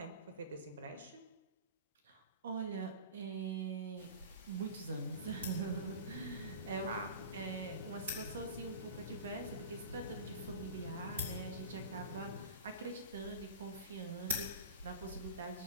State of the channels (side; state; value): both; inverted; correlation -0.34